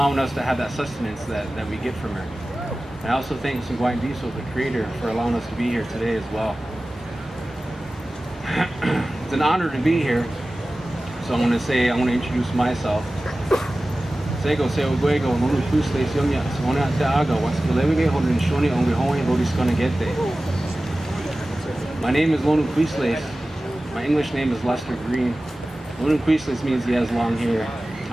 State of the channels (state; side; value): normal; both; correlation 0.96